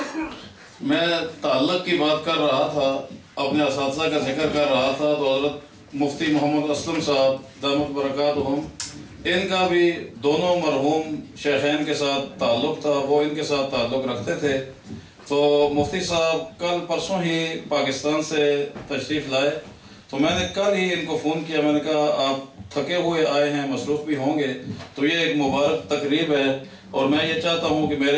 میں تعلق کی بات کر رہا تھا، اپنے اساتذہ کا ذکر کر رہا تھا، تو حضرت مفتی محمد اسلم صاحب دامت برکاتہم، ان کا بھی دونوں مرحوم شیخین کے ساتھ تعلق تھا، وہ ان کے ساتھ تعلق رکھتے تھے۔ تو مفتی صاحب کل پرسوں ہی پاکستان سے تشریف لائے، تو میں نے کل ہی ان کو فون کیا، میں نے کہا آپ تھکے ہوئے آئے ہیں، مصروف بھی ہوں گے، تو یہ ایک مبارک تقریب ہے، اور میں یہ چاہتا ہوں کہ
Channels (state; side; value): identical; both; correlation 1.00